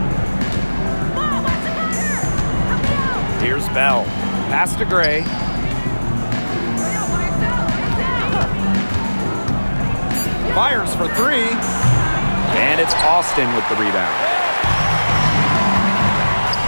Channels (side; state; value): both; inverted; correlation -1.00